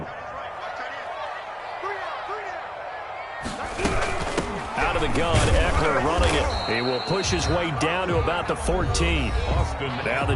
Out of the gun, Eckler running it. He will push his way down to about the 14. Now the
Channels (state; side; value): identical; both; correlation 1.00